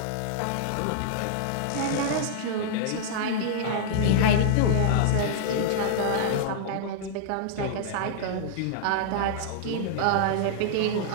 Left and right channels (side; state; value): both; different; correlation -0.02